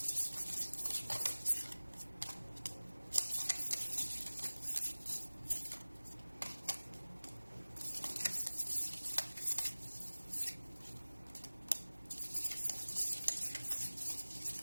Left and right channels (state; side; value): inverted; both; correlation -1.00